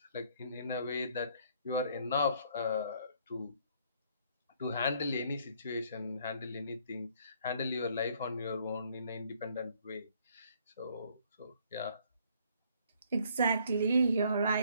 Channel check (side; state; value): both; inverted; correlation -0.63